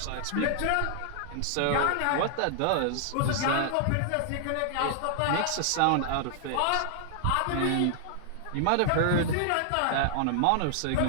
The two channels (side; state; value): both; different; correlation 0.00